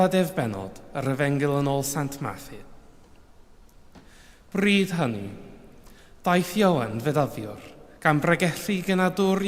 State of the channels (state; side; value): identical; both; correlation 1.00